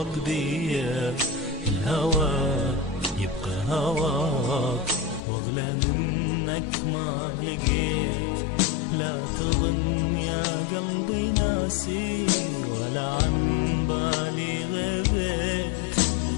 بيا، الهوى يبقى هواك واغلى منك ما لقيت. لا تظن يا قلبي ناسي ولا عن بالي غبت،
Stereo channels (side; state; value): right; drops out; at 5.2 s